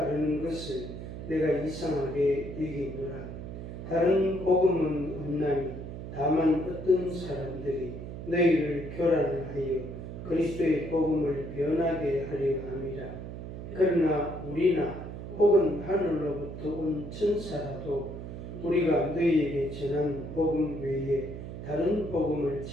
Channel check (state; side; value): noise; right; hum, 9 dB below the sound